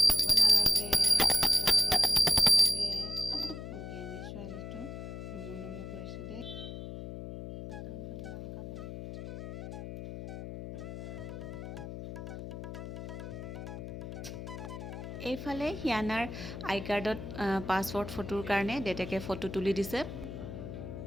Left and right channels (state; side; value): noise; left; hum, 8 dB below the sound